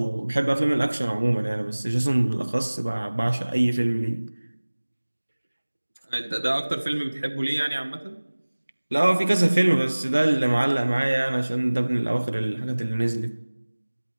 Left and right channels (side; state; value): both; inverted; correlation -1.00